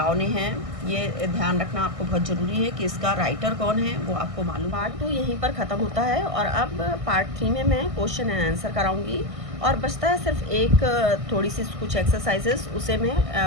ने है। ये ध्यान रखना आपको बहुत ज़रूरी है कि इसका राइटर कौन है वो आपको मालूम। पार्ट 2 यहीं पर ख़त्म होता है, और अब पार्ट 3 में मैं क्वेश्चन एंड आंसर कराऊंगी, और बचता है सिर्फ एक थोड़ी सी कुछ एक्सरसाइजेस, उसे मैं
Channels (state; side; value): late; left; 1.6 ms